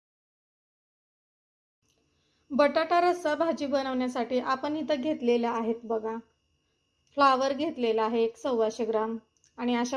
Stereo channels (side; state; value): both; identical; correlation 1.00